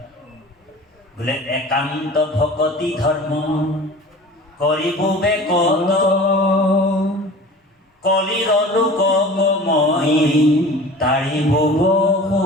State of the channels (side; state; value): both; normal; correlation 0.41